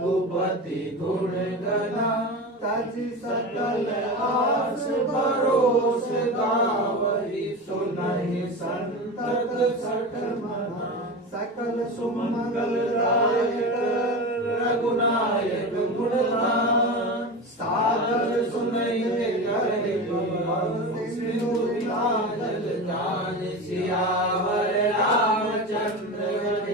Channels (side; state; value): both; normal; correlation 0.25